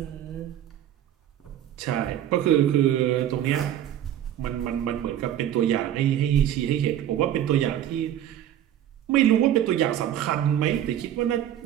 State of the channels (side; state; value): left; quieter; 11.1 dB